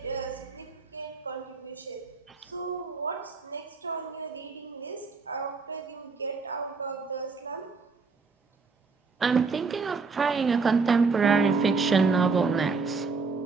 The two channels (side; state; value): left; quieter; 4.6 dB